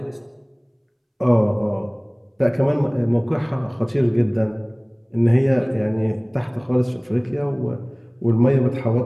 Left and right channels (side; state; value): both; identical; correlation 1.00